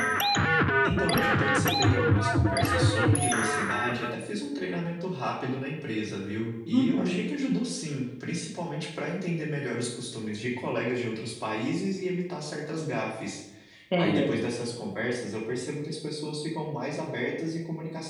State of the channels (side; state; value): both; identical; correlation 1.00